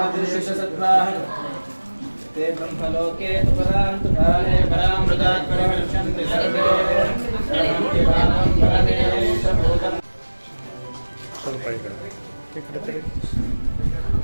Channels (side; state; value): both; inverted; correlation -1.00